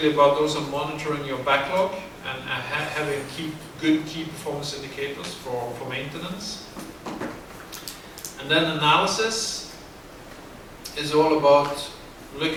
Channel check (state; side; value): identical; both; correlation 1.00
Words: about also monitoring your backlog and having good key performance indicators for maintenance. And then analysis is all about